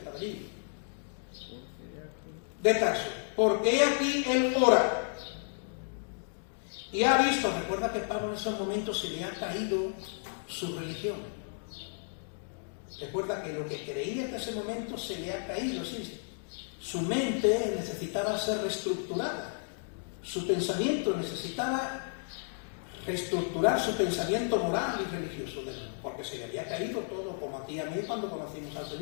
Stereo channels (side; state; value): right; silent; digital silence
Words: allí. De Tarso, porque he aquí él ora. Y ha visto, recuerda que Pablo en esos momentos se le ha caído su religión. Recuerda que lo que creía hasta ese momento se le ha caído, sí. Su mente necesitaba ser reestructurada, su pensamiento necesitaba reestructurar su pensamiento moral y religioso, porque se le había caído todo, como a ti y a mí cuando conocimos al